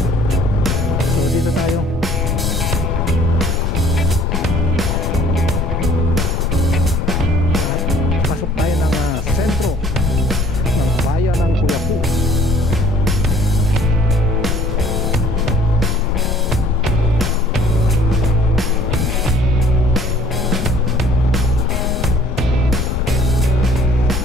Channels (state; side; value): normal; both; correlation 0.56